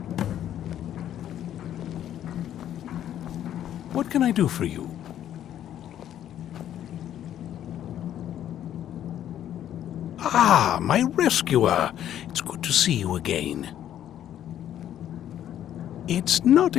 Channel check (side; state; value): right; quieter; 11.0 dB